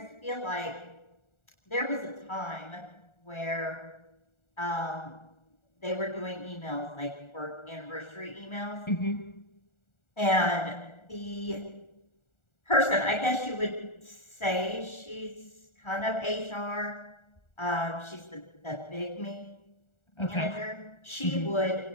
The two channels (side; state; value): right; late; 1.4 ms